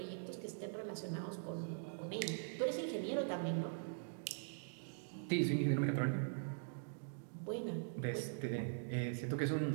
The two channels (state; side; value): silent; left; digital silence